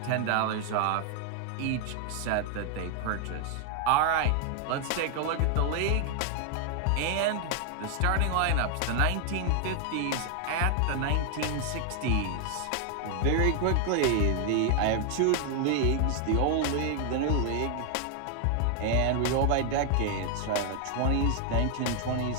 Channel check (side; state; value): both; different; correlation 0.00